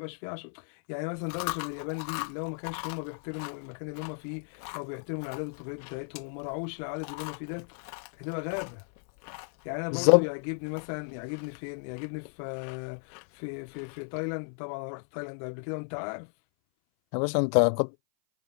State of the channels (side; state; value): right; silent; 56 dB below the other